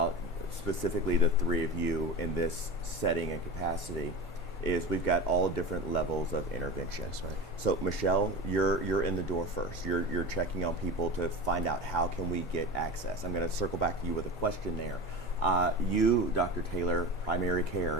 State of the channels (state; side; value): normal; both; correlation 0.29